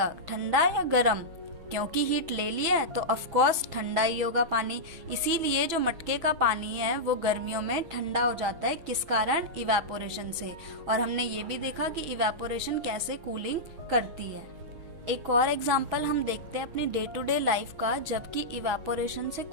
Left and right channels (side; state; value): left; late; 6.1 ms